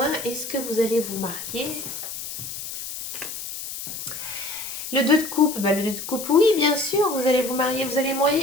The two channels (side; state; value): left; noise; hiss, 8 dB below the sound